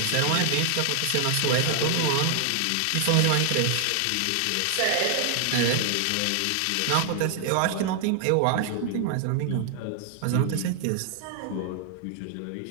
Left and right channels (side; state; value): both; different; correlation 0.00